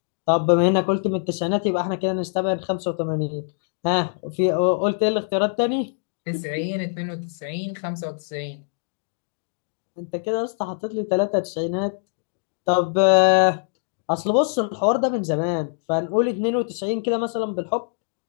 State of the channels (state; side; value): silent; right; digital silence